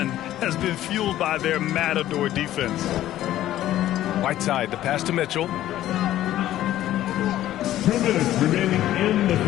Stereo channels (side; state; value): right; quieter; 13.4 dB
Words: has been fueled by their matador defense. Whiteside, the pass to Mitchell. 2 minutes remaining in the